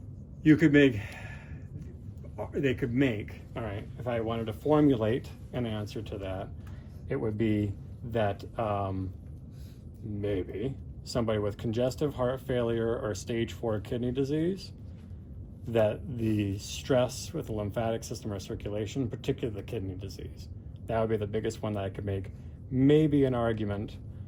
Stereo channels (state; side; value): identical; both; correlation 1.00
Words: they could make, all right, if I wanted to formulate an answer to that, it would be that maybe somebody with congestive heart failure or stage 4 kidney disease, that the stress with the lymphatic system or circulation, particularly the kidney disease, that would be the biggest one that I could make maybe an argument